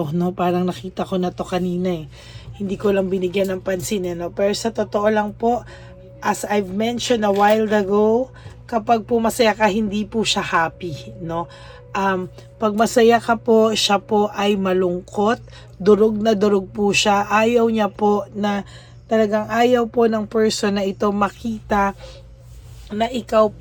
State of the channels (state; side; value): identical; both; correlation 1.00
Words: no? Parang nakita ko na to kanina eh. Hindi ko lang binigyan ng pansin, no? Pero sa totoo lang po, as I've mentioned a while ago, kapag po masaya ka, hindi po siya happy, no? Pag masaya ka po, siya po ay malungkot, durog na durog po siya. Ayaw niya po na, talagang ayaw po ng person na ito makita na ikaw